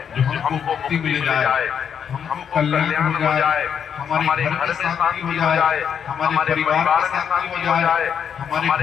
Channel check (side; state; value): right; quieter; 7.8 dB